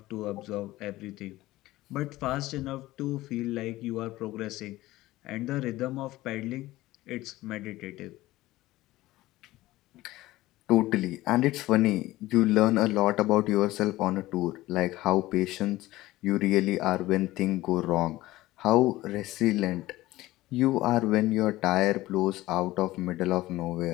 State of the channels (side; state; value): right; quieter; 17.3 dB